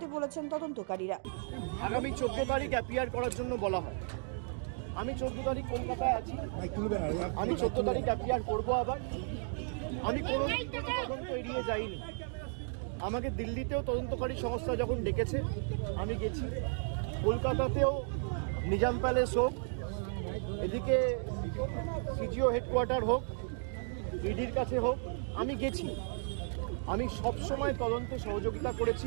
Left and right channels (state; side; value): silent; left; 55 dB below the other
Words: বলেছেন তদন্তকারীরা। আগামী 14 তারিখ অ্যাপিয়ার করার জন্য বলা হয়। আমি 14 তারিখ কলকাতায় আছি। আমি 14 তারিখ অ্যাপিয়ার করবো আবার। আমি কোনো তদন্ত এড়িয়ে যাইনি। আমাকে দিল্লিতেও তদন্তকারী সংস্থা যখন ডেকেছে আমি গেছি। কলকাতাতেও নিজাম প্যালেস হোক, এদিকে সিজিও হেডকোয়ার্টার হোক, ইডির কাছে হোক, আমি গেছি। আমি সবসময় তদন্তে সহযোগিতা